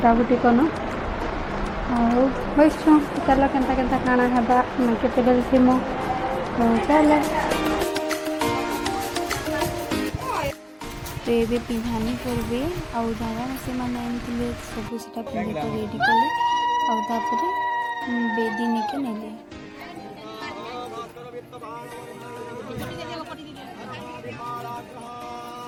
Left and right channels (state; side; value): identical; both; correlation 1.00